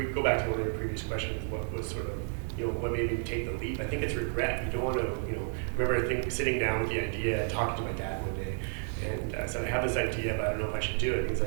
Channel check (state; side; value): silent; left; 57 dB below the other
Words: go back to one of your previous questions, what was sort of, what made me take the leap? I think it's regret. You don't want to, remember sitting down with the idea and talking to my dad one day, and I said, I have this idea, but I don't know if I should do it. And he's